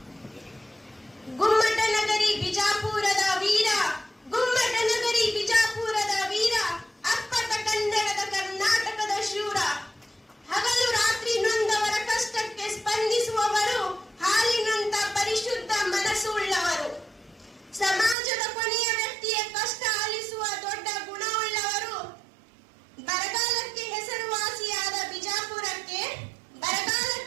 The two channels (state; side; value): drops out; left; at 18.2 s